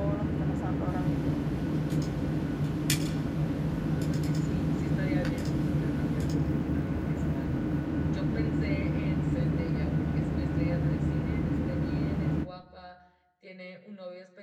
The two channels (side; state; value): both; identical; correlation 1.00